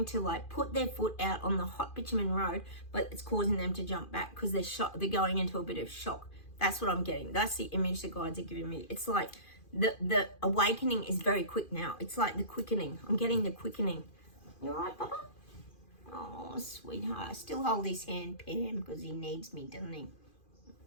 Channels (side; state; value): right; late; 2.4 ms